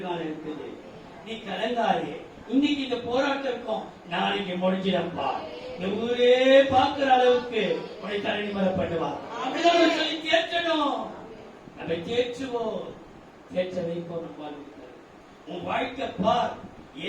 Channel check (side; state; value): both; identical; correlation 1.00